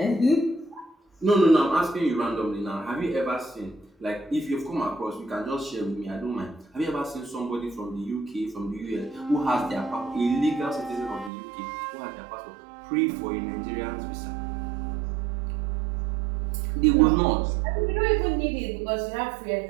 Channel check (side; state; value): left; drops out; at 11.3 s